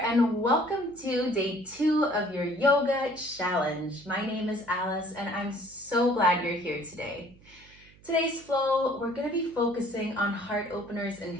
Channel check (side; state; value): right; noise; hum, 26 dB below the sound